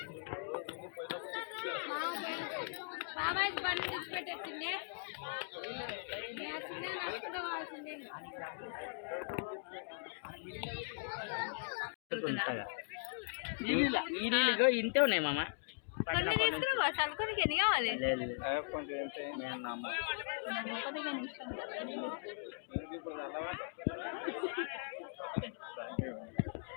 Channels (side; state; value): right; silent; digital silence